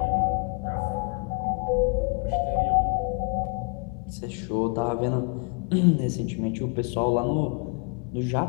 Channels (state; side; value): quieter; right; 35.4 dB